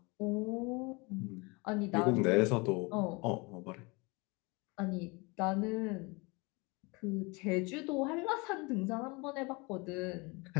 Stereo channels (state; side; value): quieter; right; 27.3 dB